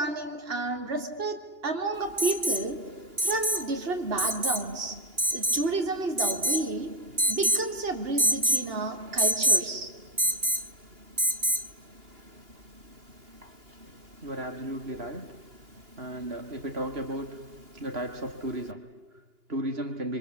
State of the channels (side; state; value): left; late; 2.8 ms